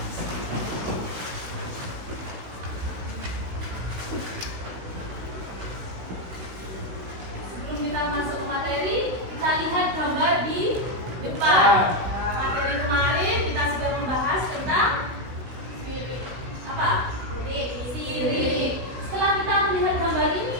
Sebelum kita masuk ke materi, kita lihat gambar di depan. Materi kemarin kita sudah membahas tentang apa? Sirip. Setelah kita melihat gambar ini,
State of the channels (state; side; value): late; left; 16 ms